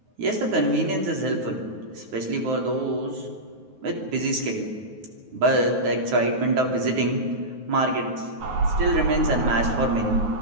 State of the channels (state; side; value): late; left; 9.4 ms